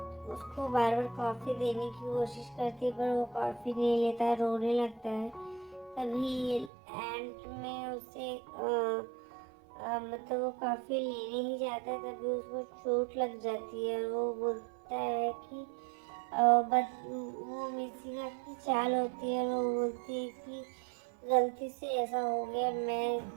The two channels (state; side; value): drops out; left; at 6.7 s